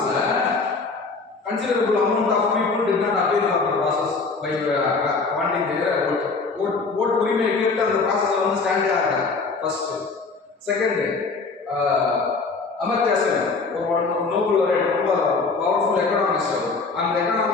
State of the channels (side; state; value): right; quieter; 4.2 dB